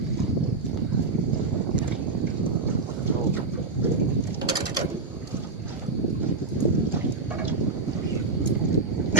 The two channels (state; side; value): quieter; left; 3.8 dB